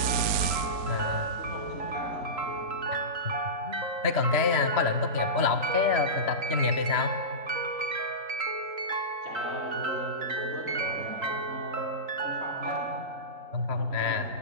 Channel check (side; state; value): left; late; 4.4 ms